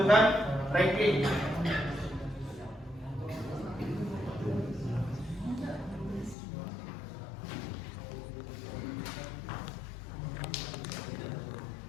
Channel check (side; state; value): right; drops out; at 6.4 s